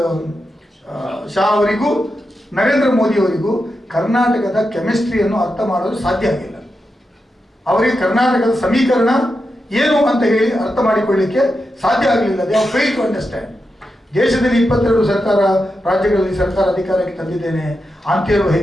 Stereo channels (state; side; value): normal; both; correlation 0.88